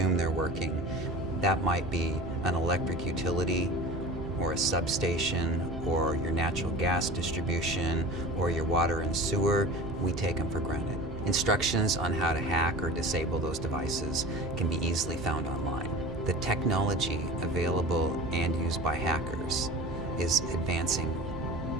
they're working. That might be an electric utility, or a substation, or your natural gas distribution, or your water and sewer. We take them for granted. Instructions on how to hack or disable those devices can be easily found online. The technology available and used by hackers is advancing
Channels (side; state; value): both; normal; correlation 0.36